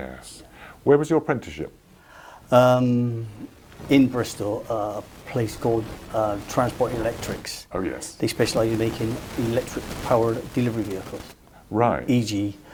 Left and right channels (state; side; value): identical; both; correlation 1.00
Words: Where was your apprenticeship? In Bristol, a place called Transport Electrics. Oh yes. They specialise in making electric-powered delivery vehicles. Right. E.g.